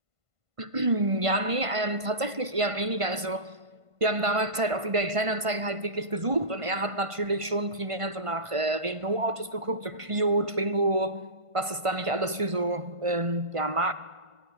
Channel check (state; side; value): late; left; 1.5 ms